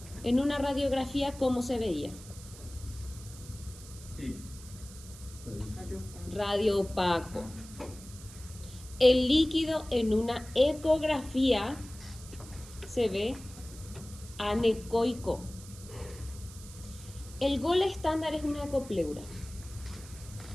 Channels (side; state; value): right; noise; hiss, 17 dB below the sound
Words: En una radiografía, ¿cómo se veía? Sí. Radioopaco. El líquido en una ecografía se ve anecoico. El gol estándar es una ecopleura.